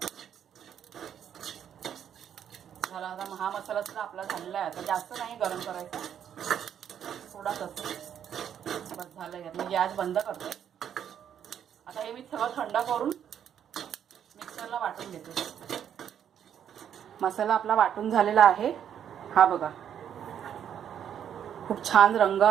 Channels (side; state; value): left; quieter; 9.1 dB